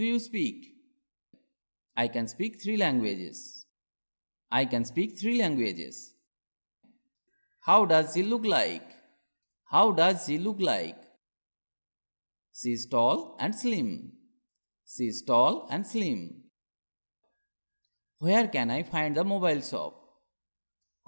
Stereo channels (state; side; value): inverted; both; correlation -1.00